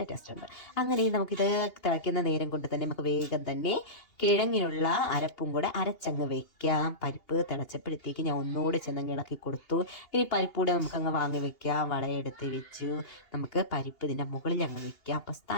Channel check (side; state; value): right; late; 2.8 ms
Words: ടേസ്റ്റ് ഉണ്ട്. അങ്ങനെ നമുക്കിത് തിളയ്ക്കുന്ന നേരം കൊണ്ട് തന്നെ നമുക്ക് വേഗം തന്നെ കിഴങ്ങിനുള്ള അരപ്പും കൂടെ അരച്ചങ്ങ് വെക്കാം. പരിപ്പ് തിളച്ചപ്പോഴത്തേക്ക് ഞാൻ ഒന്നുകൂടെ ചെന്നങ്ങ് ഇളക്കി കൊടുത്തു. ഇനി പരിപ്പ് കൂടെ നമുക്കങ്ങ് വാങ്ങി വെക്കാം. വളയെടുത്ത് വെച്ചു. നമുക്ക് പരിപ്പ് ഇതിൻ്റെ മുകളിൽ അങ്ങ് വെക്കാം. അപ്പം